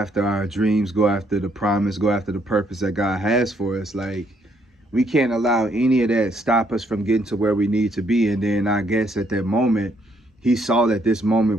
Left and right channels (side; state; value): both; normal; correlation 0.71